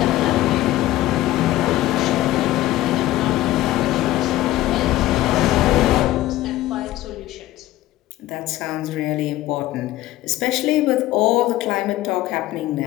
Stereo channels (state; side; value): quieter; right; 15.7 dB